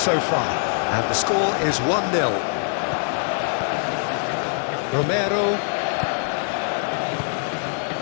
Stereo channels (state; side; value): silent; right; 63 dB below the other